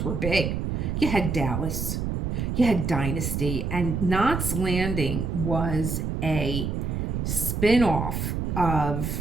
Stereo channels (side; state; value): right; noise; rumble, 1 dB below the sound